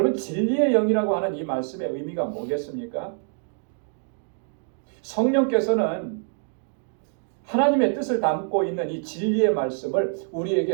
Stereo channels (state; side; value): silent; left; 58 dB below the other